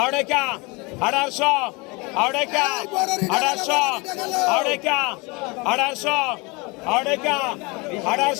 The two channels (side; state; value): right; quieter; 26.9 dB